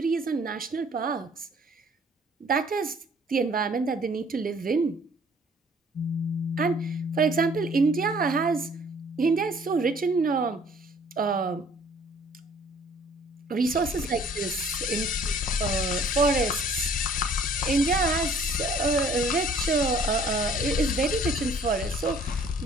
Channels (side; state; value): both; normal; correlation 0.56